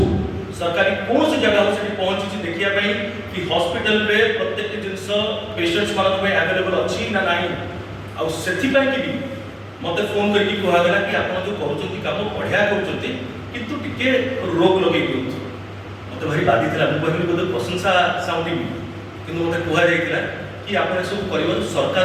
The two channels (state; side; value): identical; both; correlation 1.00